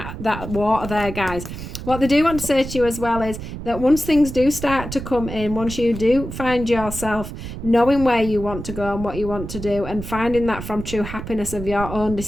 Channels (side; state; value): right; noise; rumble, 9 dB below the sound